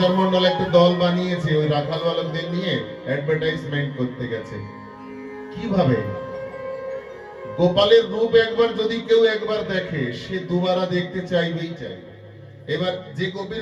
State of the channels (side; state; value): both; identical; correlation 1.00